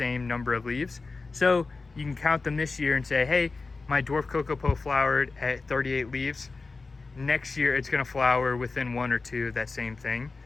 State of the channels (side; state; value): right; quieter; 3.9 dB